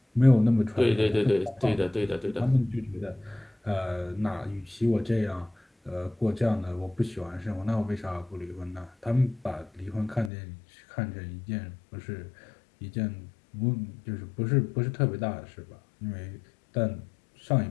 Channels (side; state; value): right; drops out; at 10.3 s